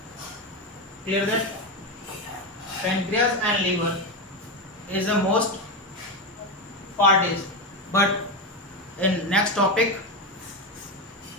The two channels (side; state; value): both; normal; correlation 0.13